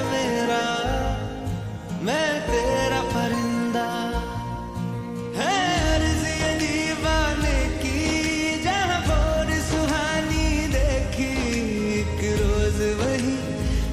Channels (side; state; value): both; identical; correlation 1.00